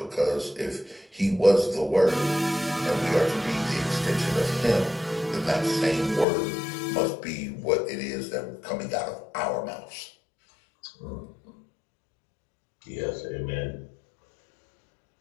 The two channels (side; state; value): right; drops out; at 6.2 s